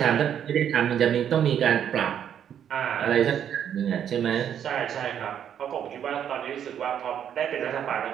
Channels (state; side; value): quieter; left; 9.2 dB